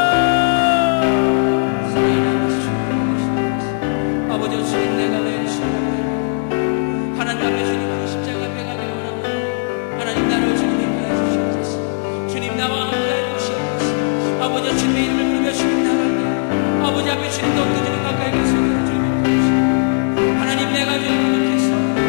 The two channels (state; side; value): silent; right; 64 dB below the other